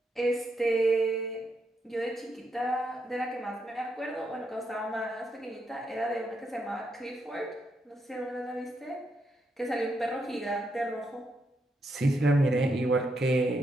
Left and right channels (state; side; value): normal; both; correlation 0.80